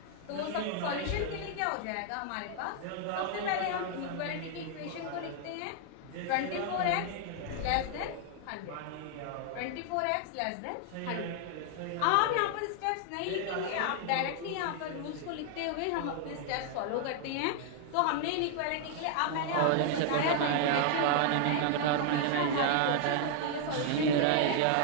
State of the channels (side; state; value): both; different; correlation 0.00